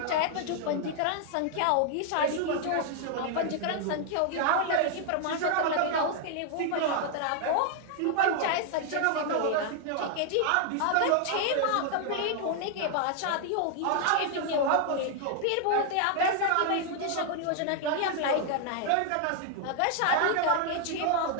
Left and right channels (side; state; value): both; different; correlation 0.00